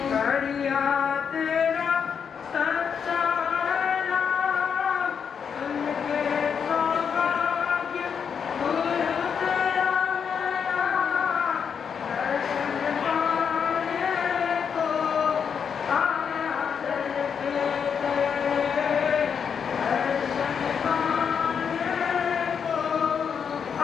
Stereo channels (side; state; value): right; quieter; 6.9 dB